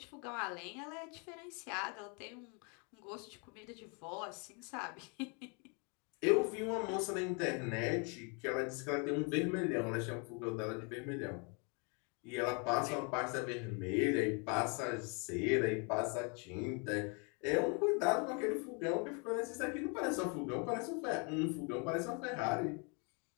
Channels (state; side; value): quieter; right; 34.8 dB